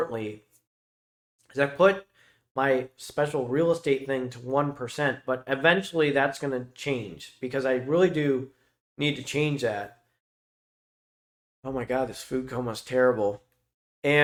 is I put my special real estate thing to 1%, but eventually that's going to change because I really do need to change that. Oh my God, this food coma is terrible.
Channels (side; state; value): both; identical; correlation 1.00